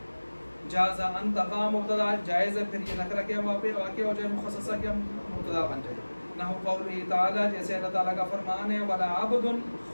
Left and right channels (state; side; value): inverted; both; correlation -1.00